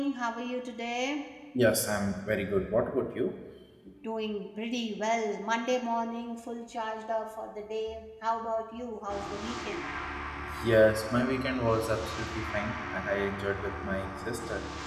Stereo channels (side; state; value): both; identical; correlation 1.00